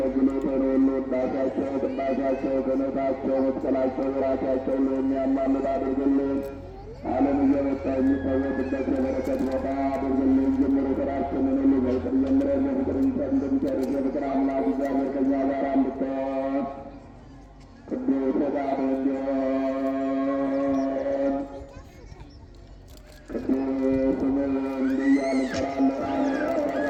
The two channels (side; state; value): both; identical; correlation 1.00